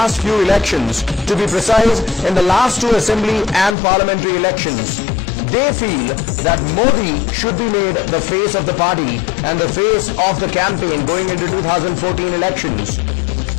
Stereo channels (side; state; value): right; drops out; at 3.8 s